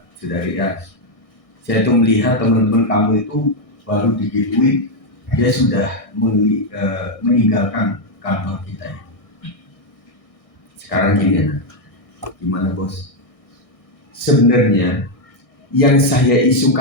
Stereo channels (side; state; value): right; late; 1.6 ms